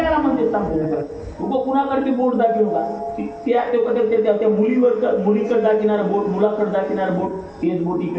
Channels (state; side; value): identical; both; correlation 1.00